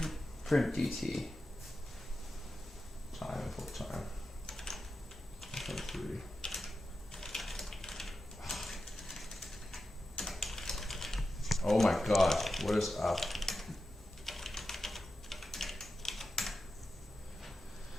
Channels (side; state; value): both; normal; correlation 0.91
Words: Print dt. time full time. 3. Oh my god, what is up?